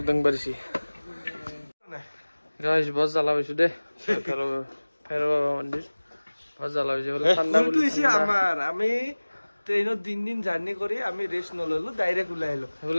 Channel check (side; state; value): both; inverted; correlation -1.00